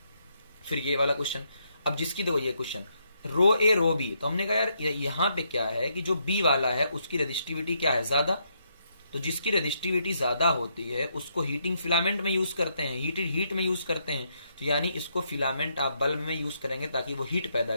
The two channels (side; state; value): both; inverted; correlation -0.77